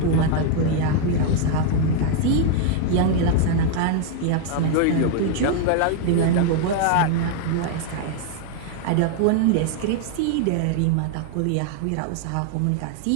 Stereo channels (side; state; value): both; different; correlation 0.00